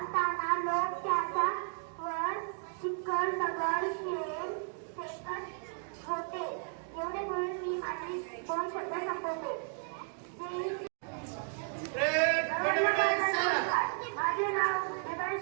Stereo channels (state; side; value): silent; left; 55 dB below the other